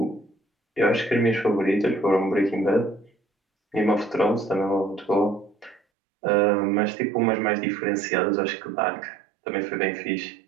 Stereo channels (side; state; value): left; drops out; at 5.8 s